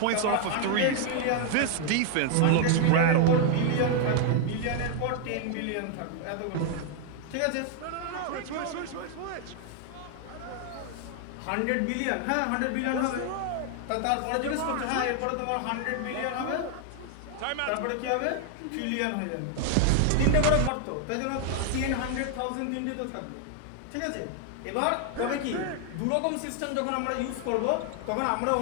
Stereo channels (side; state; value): both; different; correlation 0.00